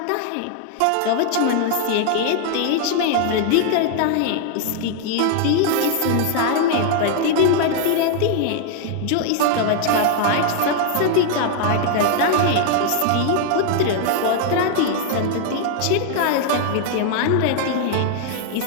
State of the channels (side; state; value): both; different; correlation 0.00